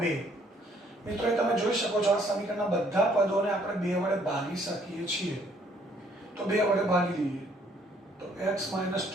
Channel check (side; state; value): both; normal; correlation 0.64